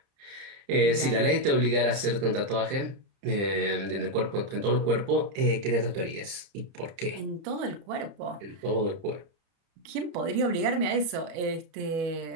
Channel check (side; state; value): left; late; 30 ms